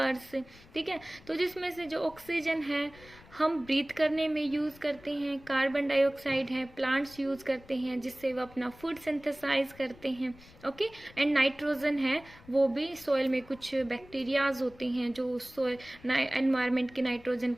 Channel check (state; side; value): noise; left; rumble, 23 dB below the sound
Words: ठीक है, तो जिसमें से जो ऑक्सीजन है हम ब्रीथ करने में यूज़ करते हैं, कार्बन डाइऑक्साइड है प्लांट्स यूज़ करते हैं जिससे वो अपना फूड सिंथेसाइज करते हैं. ओके, एंड नाइट्रोजन है वो भी सॉइल में कुछ बैक्टीरियाज होते हैं जो सॉइल एनवायरनमेंट के नाइट्रोजन